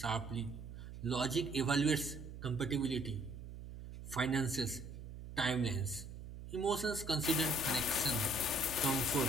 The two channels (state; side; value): noise; right; hum, 11 dB below the sound